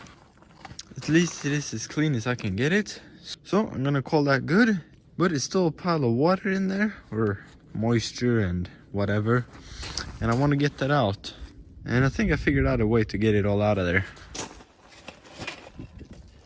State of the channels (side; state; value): both; identical; correlation 1.00